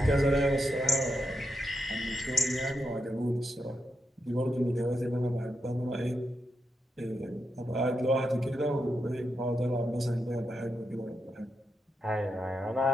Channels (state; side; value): normal; both; correlation 0.85